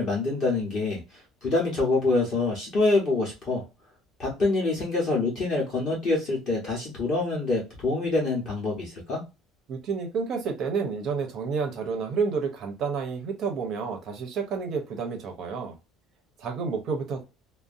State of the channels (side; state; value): both; normal; correlation 0.58